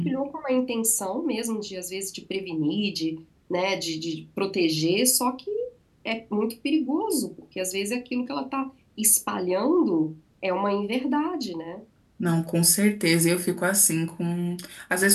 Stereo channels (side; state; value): both; identical; correlation 1.00